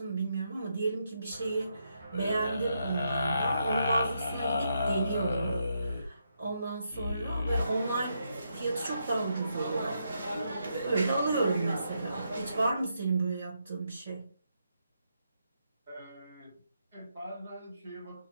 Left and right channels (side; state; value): both; inverted; correlation -0.80